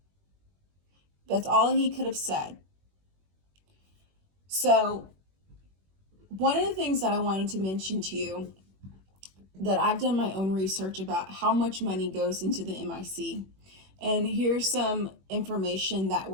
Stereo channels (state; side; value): late; left; 21 ms